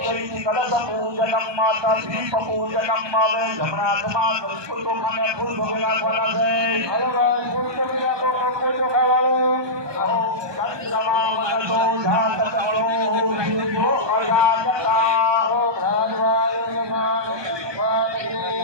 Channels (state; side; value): late; left; 1.2 ms